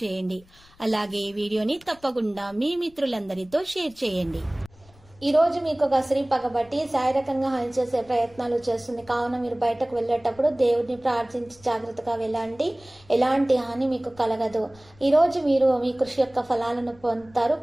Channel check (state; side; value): noise; left; rumble, 27 dB below the sound